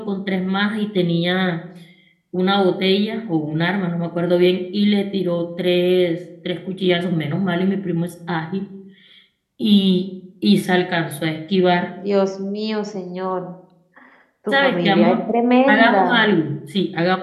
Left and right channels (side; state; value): both; identical; correlation 1.00